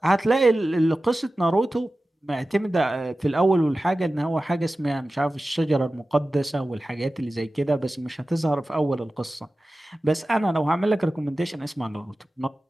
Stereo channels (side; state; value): both; normal; correlation 0.95